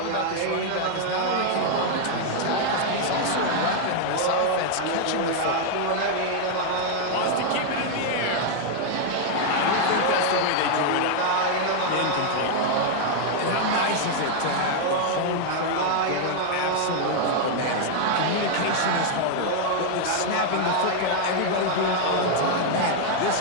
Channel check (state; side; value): different; both; correlation 0.00